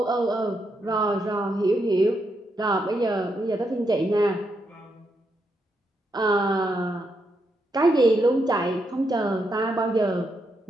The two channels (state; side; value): normal; both; correlation 0.81